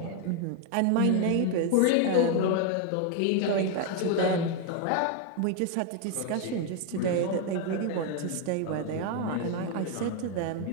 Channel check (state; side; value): different; both; correlation 0.01